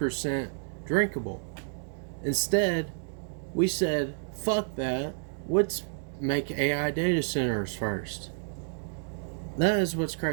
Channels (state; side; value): silent; left; digital silence